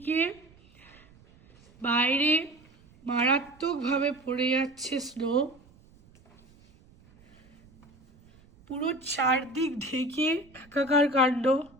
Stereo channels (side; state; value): right; noise; rumble, 28 dB below the sound